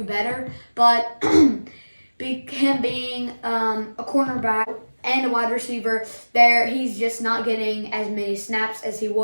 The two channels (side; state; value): both; inverted; correlation -1.00